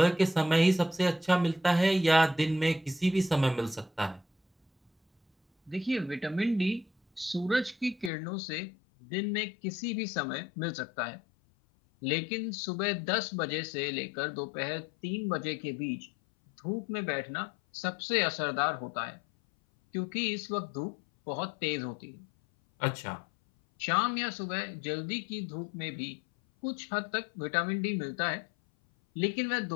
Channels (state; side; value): drops out; right; at 8.1 s